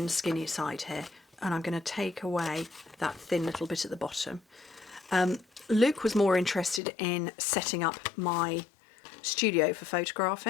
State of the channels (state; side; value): drops out; right; at 6.8 s